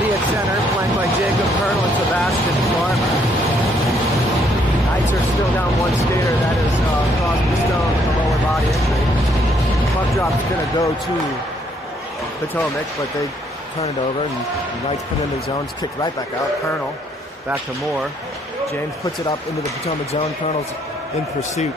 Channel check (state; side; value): normal; both; correlation 0.69